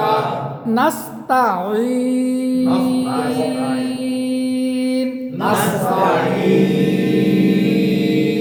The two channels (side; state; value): both; identical; correlation 1.00